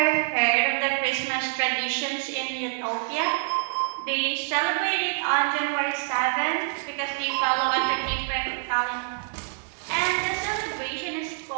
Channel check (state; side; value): silent; left; 61 dB below the other